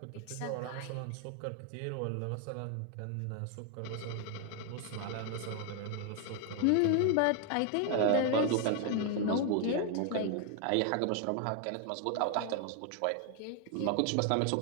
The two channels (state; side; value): different; both; correlation 0.00